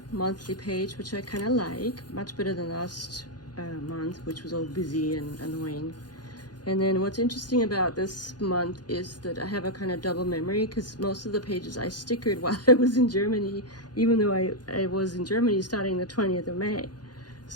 monthly page, which I kind of like, much better than last month, which was all busy and annoying. And then what's interesting about this month is that I have a kind of double memory because most of the pages I stickered while I was in Germany, even though I was in Germany starting the 20th of May.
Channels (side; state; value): right; late; 0.69 ms